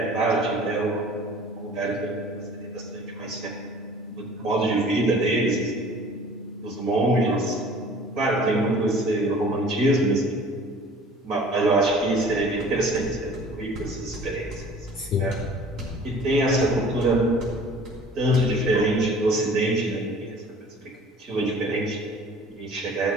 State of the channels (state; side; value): normal; both; correlation 0.48